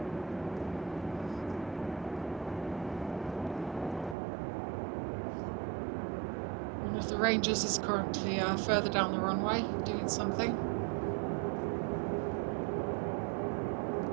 One of the Rangers is currently further down the runway doing something.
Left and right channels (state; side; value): drops out; left; at 4.2 s